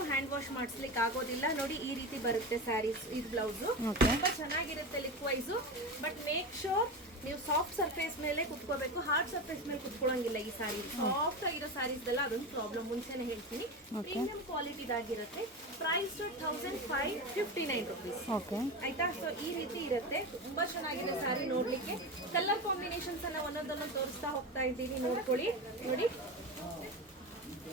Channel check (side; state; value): both; normal; correlation 0.22